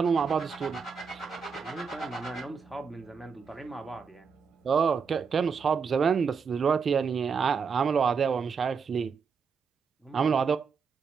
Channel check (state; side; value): quieter; left; 5.9 dB